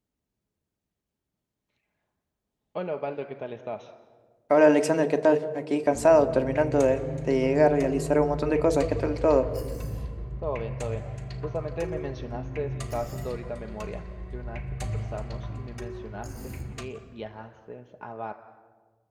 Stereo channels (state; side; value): identical; both; correlation 1.00